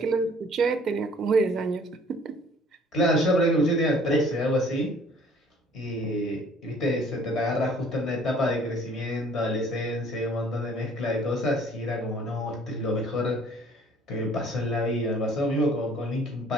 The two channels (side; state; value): both; normal; correlation 0.56